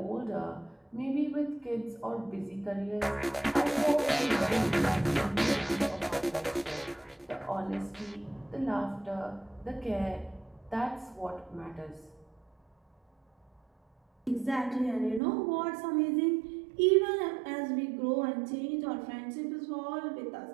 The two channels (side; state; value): left; drops out; at 15.2 s